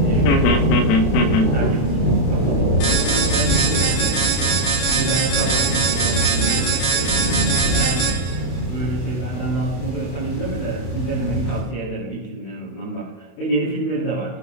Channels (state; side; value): late; right; 32 ms